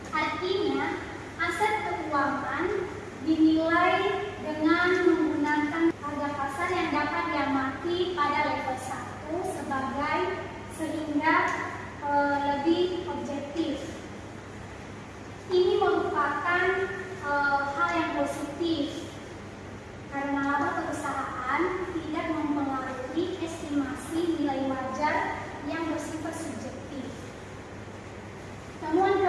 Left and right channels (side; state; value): both; identical; correlation 1.00